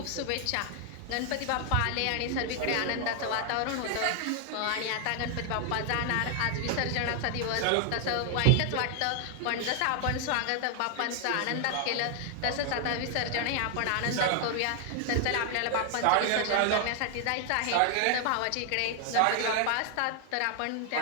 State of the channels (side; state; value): both; different; correlation 0.00